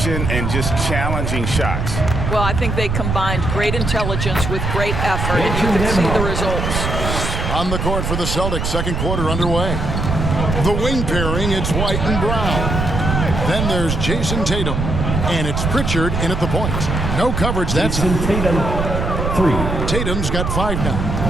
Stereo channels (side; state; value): right; noise; rumble, 2 dB below the sound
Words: and just challenging shots. Well, I think they combined great intelligence with great effort, and you can see the results. On the court for the Celtics, second quarter underway. The wing pairing, it's White and Brown. Then there's Jason Tatum, and it's Pritchard in at the point. No coverage, that's Tatum, 3. Tatum's got 5 now.